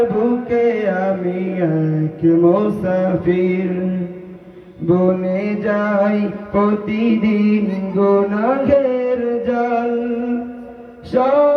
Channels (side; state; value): both; identical; correlation 1.00